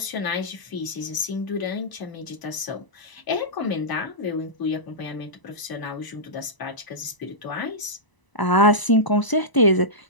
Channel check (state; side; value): late; right; 1.0 ms